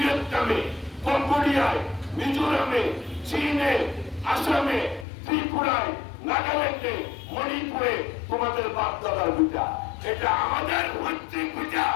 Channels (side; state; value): right; drops out; at 5.1 s